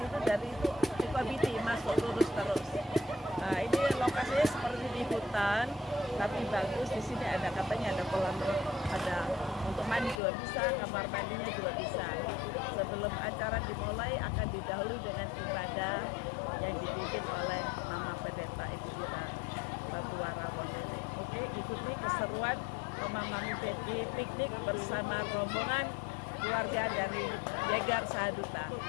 itu dari Sukabiti masuk lurus terus. Nah ini lokasinya seperti di hutan, tapi bagus. Di sini ada katanya ada kolam, ada untuk mandi juga bisa, kamar mandinya juga bisa. Sebelum acara dimulai akan didahului dengan ibadah yang dipimpin oleh Mama Pendeta Ibu kita Batuara Wondene. Oke, ikuti keseruan Mama Mami Betty piknik bersama rombongan keluarga dari Yegar Sahaduta.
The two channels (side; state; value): right; drops out; at 10.2 s